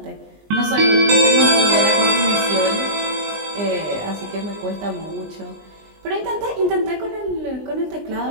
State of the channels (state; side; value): late; left; 20 ms